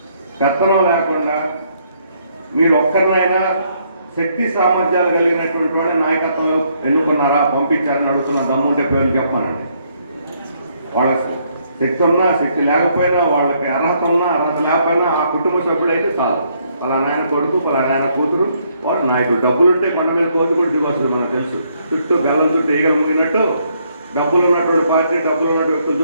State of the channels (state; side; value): inverted; both; correlation -0.71